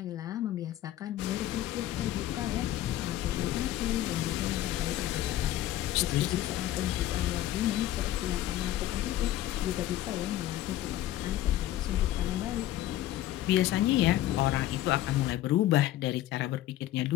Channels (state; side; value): quieter; right; 13.9 dB